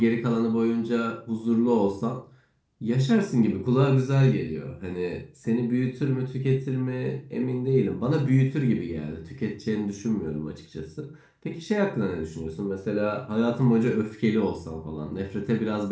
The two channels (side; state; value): both; identical; correlation 1.00